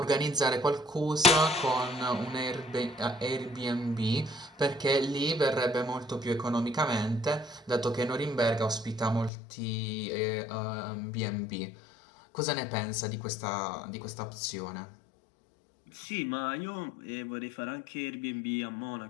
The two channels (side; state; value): right; drops out; at 9.3 s